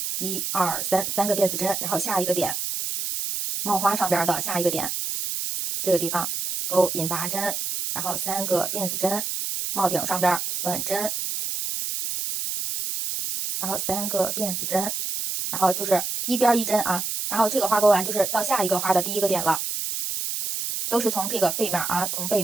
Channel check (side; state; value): right; noise; hiss, 3 dB below the sound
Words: ，1、2、3，三个辫子针，然后下一个点，帽花上边的下一个点，这个地方勾引拔针，然后3个辫子针，帽顶上边短针，然后3个辫子针，然后就是一边一针啊，然后这个花勾完就是到下一个花的第一个点了，都是从这个背面啊，从背